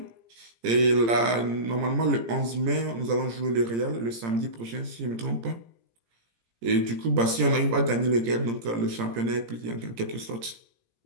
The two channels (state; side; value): late; left; 17 ms